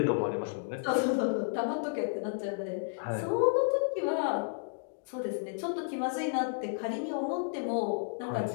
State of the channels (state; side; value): silent; right; digital silence